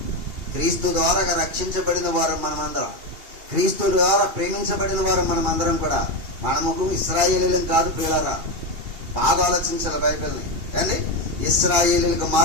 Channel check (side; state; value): left; late; 2.8 ms